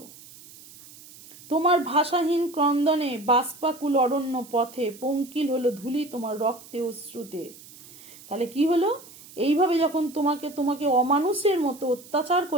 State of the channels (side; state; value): right; noise; hiss, 20 dB below the sound